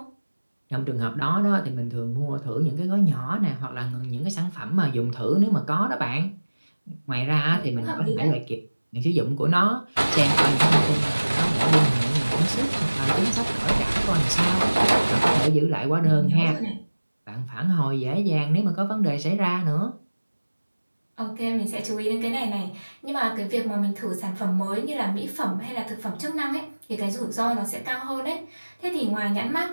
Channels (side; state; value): both; inverted; correlation -1.00